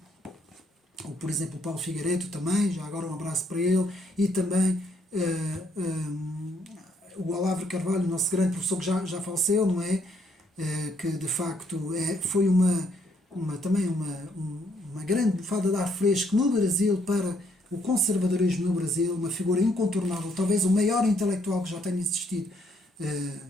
Ou, por exemplo, o Paulo Figueiredo também, já agora um abraço para ele, e também o Olavo Carvalho, nosso grande professor que já faleceu, não é? Que de facto foi também uma grande bufada de ar fresco no Brasil para o conservadorismo no Brasil, uma figura incontornável, talvez o maior intelectual que já tenha existido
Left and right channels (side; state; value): both; normal; correlation 0.71